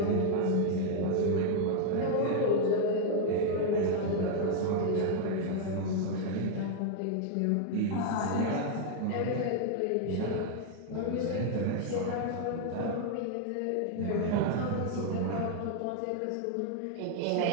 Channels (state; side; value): different; both; correlation 0.00